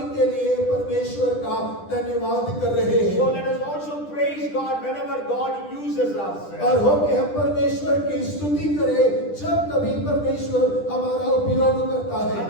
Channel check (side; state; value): right; late; 10 ms